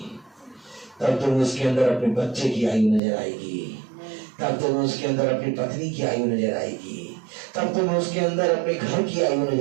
तब तुम्हें उसके अंदर अपने बच्चे की आयु नजर आएगी, तब तुम्हें उसके अंदर अपनी पत्नी की आयु नजर आएगी, तब तुम्हें उसके अंदर अपने घर की आयु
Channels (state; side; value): drops out; left; at 3.0 s